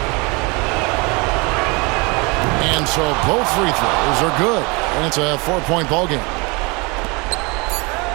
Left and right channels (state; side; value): quieter; left; 28.2 dB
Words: And so both free throws are good, and it's a 4-point ball game.